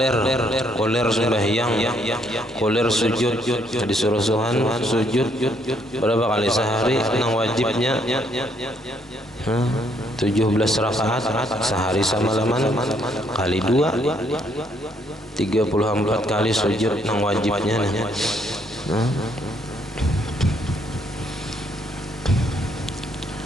Koler sembahyang, koler sujud, disuruh Tuhan sujud berapa kali sehari? Nang wajibnya 17 rakaat sehari semalaman kali 2 34 kali sujud nang wajibnya.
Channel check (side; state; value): both; normal; correlation 0.70